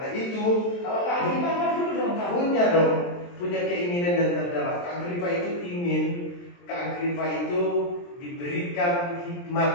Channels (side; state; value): right; late; 23 ms